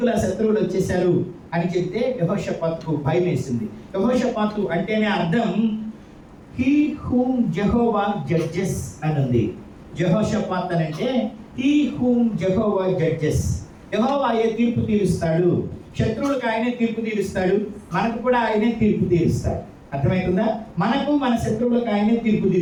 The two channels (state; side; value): identical; both; correlation 1.00